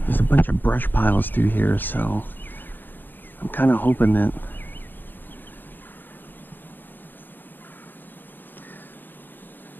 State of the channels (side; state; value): right; late; 0.092 ms